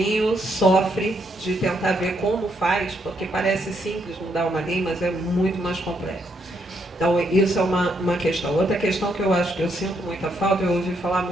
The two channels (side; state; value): both; normal; correlation 0.75